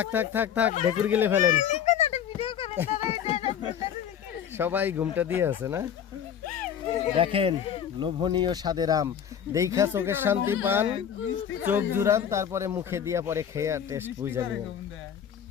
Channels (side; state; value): right; quieter; 8.8 dB